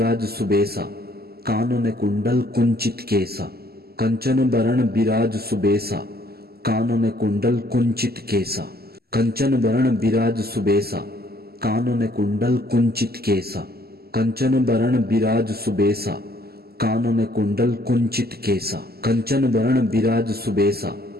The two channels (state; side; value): late; left; 0.46 ms